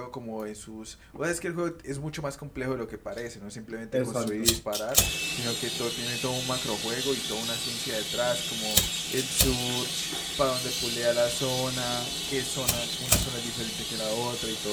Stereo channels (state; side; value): identical; both; correlation 1.00